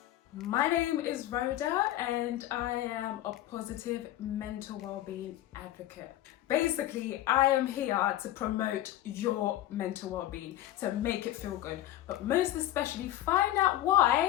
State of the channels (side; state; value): right; quieter; 13.9 dB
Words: My name is Rhoda and I am a positive mental well-being advocate. Basically, I am here to promote your mental well-being, to make it feel good, but most especially find out